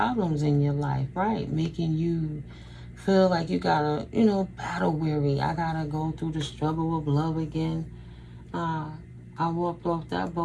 in your life, right? Making you feel like you gotta, battle weary. I gotta go through the struggle of love again. I walked off that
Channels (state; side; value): identical; both; correlation 1.00